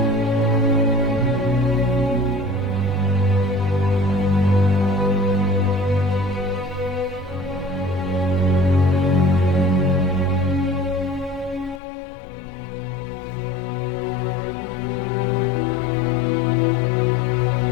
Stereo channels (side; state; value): right; drops out; at 11.8 s